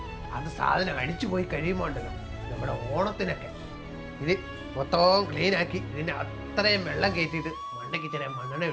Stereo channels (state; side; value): identical; both; correlation 1.00